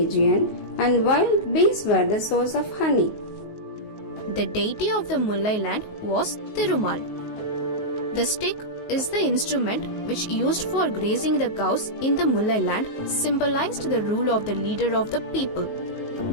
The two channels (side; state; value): right; late; 19 ms